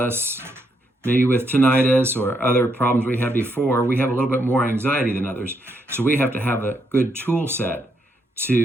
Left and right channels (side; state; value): both; normal; correlation 0.77